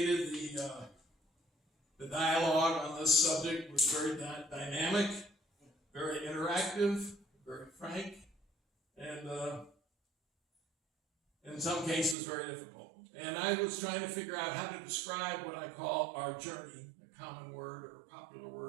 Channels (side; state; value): left; drops out; at 12.2 s